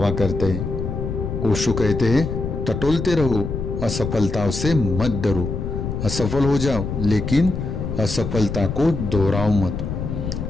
करते हैं। ओशो कहते हैं, टटोलते रहो, असफलताओं से मत डरो। असफल हो जाओ लेकिन असफलता को दोहराओ मत।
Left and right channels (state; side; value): noise; left; rumble, 4 dB below the sound